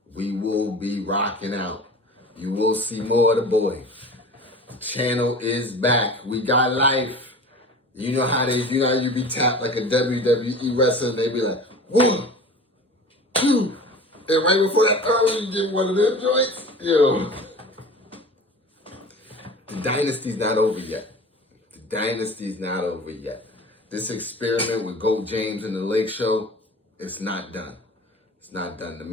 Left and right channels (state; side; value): normal; both; correlation 0.38